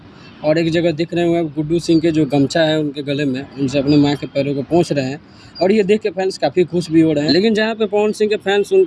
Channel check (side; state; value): both; identical; correlation 1.00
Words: और एक जगह दिख रहे होंगे आप, गुड्डू सिंह के जो गमछा है उनके गले में, उनसे अपने माँ के पैरों को पोंछ रहे हैं और ये देख के फैंस काफ़ी खुश भी हो रहे हैं। लेकिन जहाँ पे पवन सिंह के फैंस